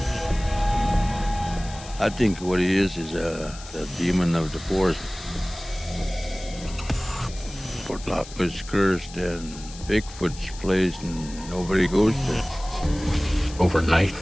I think what he is a demon of the forest. Portlock was cursed and Bigfoot's place and nobody goes there. Overnight,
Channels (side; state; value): left; noise; hiss, 16 dB below the sound